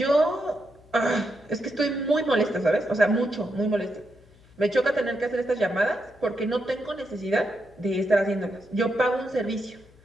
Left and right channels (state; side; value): noise; left; hum, 27 dB below the sound